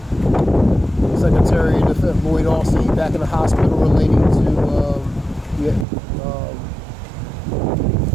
Secretary of Defense Lloyd Austin back in the hospital relating to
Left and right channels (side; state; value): left; drops out; at 5.9 s